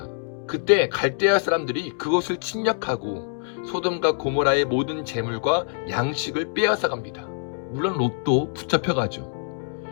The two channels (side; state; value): right; silent; digital silence